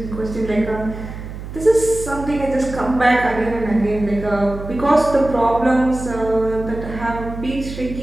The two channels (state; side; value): noise; right; hum, 10 dB below the sound